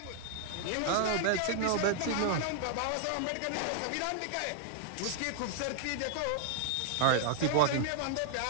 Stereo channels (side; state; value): both; different; correlation 0.00